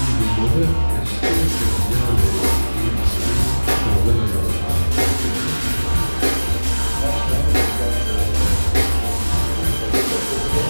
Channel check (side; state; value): both; inverted; correlation -1.00